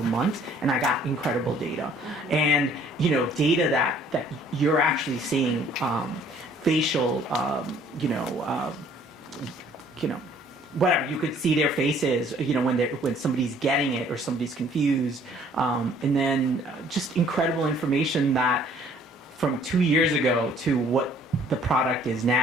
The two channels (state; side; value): normal; both; correlation 0.58